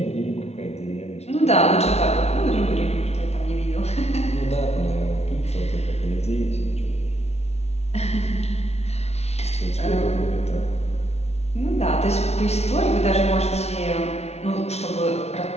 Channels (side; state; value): right; late; 0.31 ms